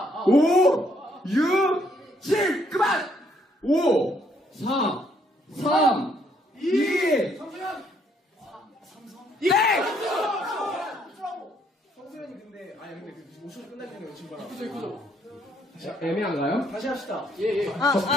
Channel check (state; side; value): normal; both; correlation 0.69